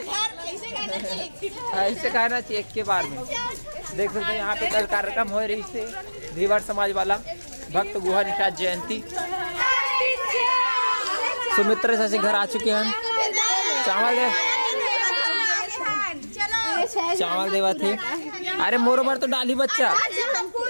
ऐसे कहना चाहिए एक के बार में। देख सकते हैं यहाँ पे कल कार्यक्रम हो रही से धीवर समाज वाला भक्त गुहा निषाद जयंती। सुमित्र से घर आ चुके हैं। चावल दे चावल देवा थे। अरे मोरो बार तो डाली बच्चा।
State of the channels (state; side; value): inverted; both; correlation -1.00